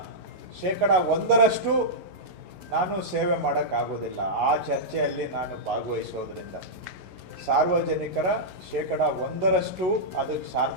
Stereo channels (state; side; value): late; left; 11 ms